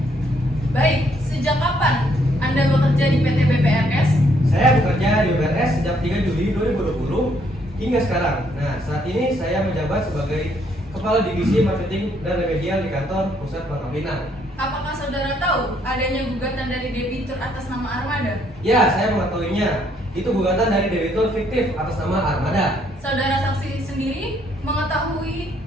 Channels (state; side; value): normal; both; correlation 0.69